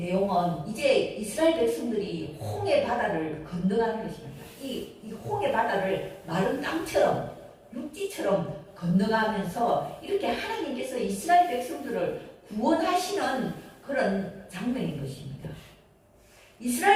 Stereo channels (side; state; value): both; identical; correlation 1.00